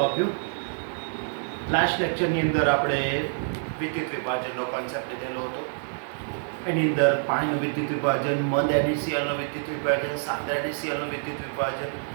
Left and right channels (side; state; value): left; silent; 60 dB below the other